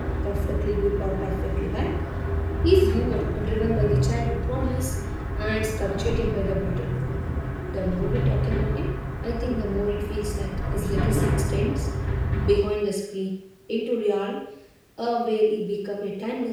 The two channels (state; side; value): identical; both; correlation 1.00